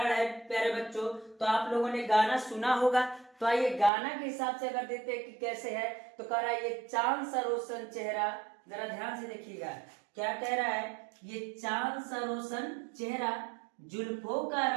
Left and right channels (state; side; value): drops out; left; at 3.9 s